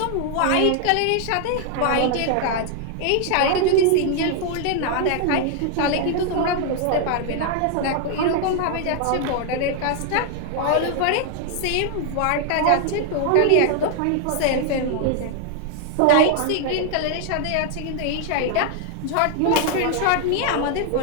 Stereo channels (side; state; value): both; different; correlation 0.00